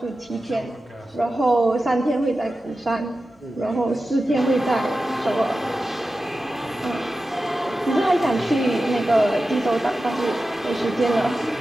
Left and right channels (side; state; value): both; normal; correlation 0.93